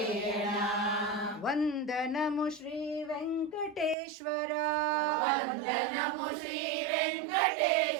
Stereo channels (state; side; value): drops out; left; at 4.0 s